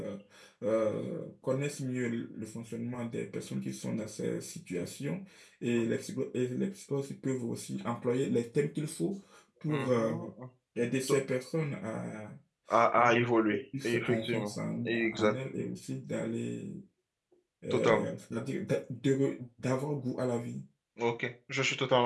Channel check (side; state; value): both; identical; correlation 1.00